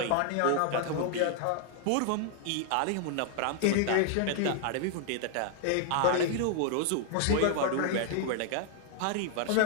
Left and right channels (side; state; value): both; different; correlation 0.00